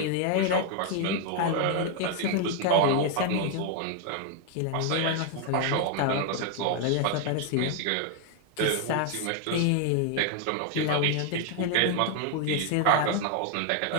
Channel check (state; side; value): different; both; correlation 0.01